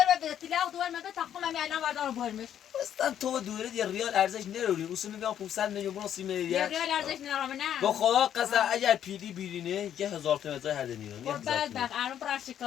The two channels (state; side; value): quieter; right; 10.0 dB